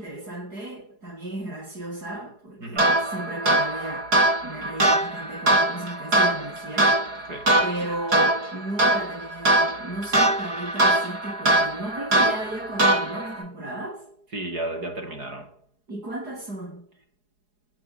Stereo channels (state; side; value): late; left; 4.8 ms